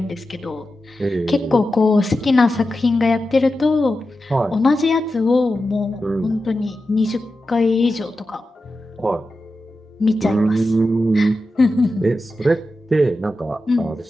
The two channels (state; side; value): normal; both; correlation 0.91